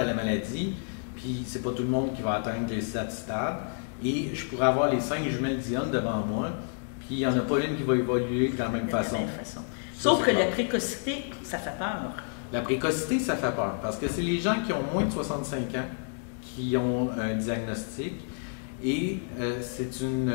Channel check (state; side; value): silent; right; 58 dB below the other